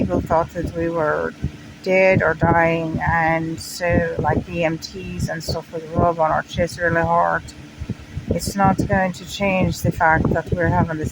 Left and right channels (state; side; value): identical; both; correlation 1.00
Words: thought that we were dead or dying, and so like EMTs and stuff would rub on our chest really hard. It's not going to change the fact that we're having a